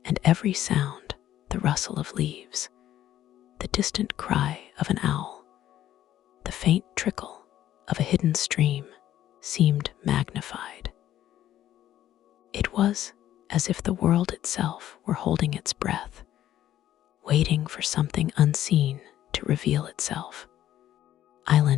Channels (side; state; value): right; quieter; 12.4 dB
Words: and every sound, the rustle of leaves, the distant cry of an owl, the faint trickle of a hidden stream, seemed magnified. It was as if the world itself were holding its breath, waiting for something unseen to reveal itself.